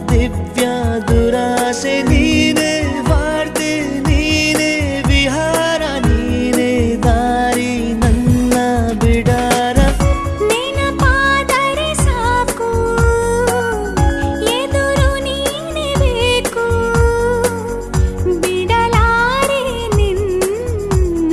ದಿವ್ಯ ದುರಾಸೆ ನೀನೇ ವಾರ್ತೆ ನೀನೇ ವಿಹಾರ ನೀನೇ ದಾರಿ ನನ್ನ ಬಿಡಾರ. ನೆನಪಾದರೆ ಸಾಕು ಎದುರು ನೀನೇ ಬೇಕು. ಬಿಡಲಾರೆ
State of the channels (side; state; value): both; identical; correlation 1.00